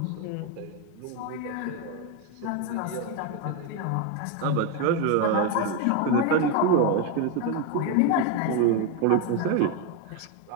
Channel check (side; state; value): both; different; correlation 0.02